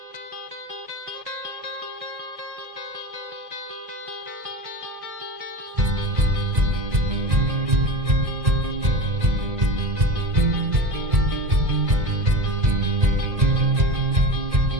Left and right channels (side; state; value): left; late; 2.0 ms